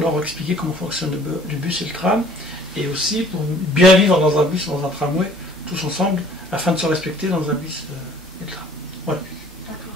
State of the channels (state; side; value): normal; both; correlation 0.54